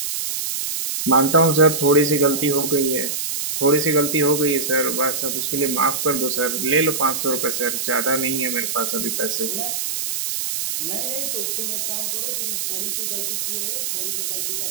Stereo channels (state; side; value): noise; right; hiss, 2 dB below the sound